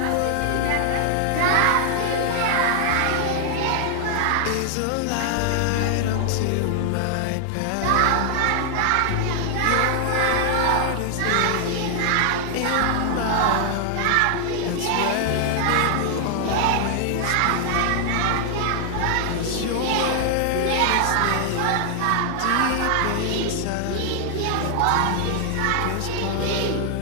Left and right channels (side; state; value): both; different; correlation 0.00